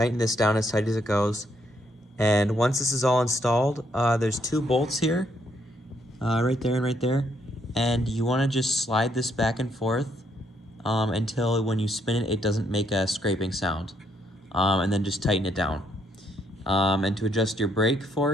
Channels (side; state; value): both; normal; correlation 0.72